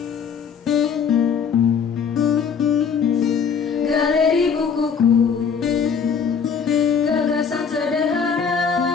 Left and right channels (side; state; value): right; quieter; 6.5 dB